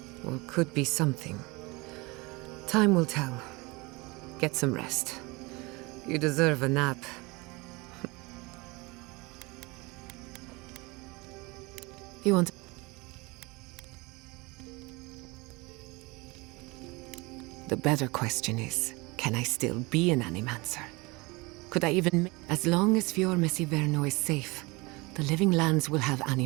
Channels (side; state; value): left; quieter; 25.1 dB